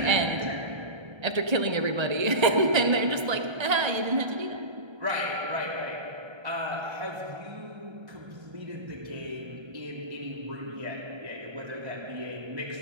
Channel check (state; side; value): late; left; 1.3 ms